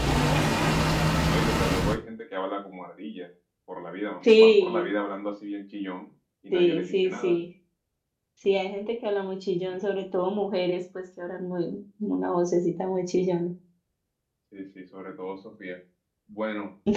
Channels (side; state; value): both; identical; correlation 1.00